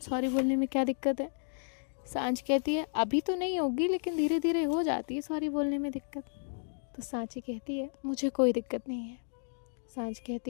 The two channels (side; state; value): right; silent; digital silence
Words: सॉरी बोलने में क्या दिक्कत है? सांझ कहती है, अभी तो नहीं होगी लेकिन धीरे धीरे हो जाती है सॉरी बोलने में दिक्कत। तो सांची कहती है, मुझे कोई दिक्कत नहीं है। सांझ